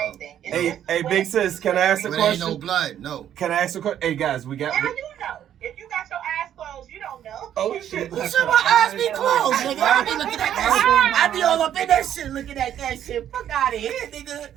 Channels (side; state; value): left; quieter; 10.5 dB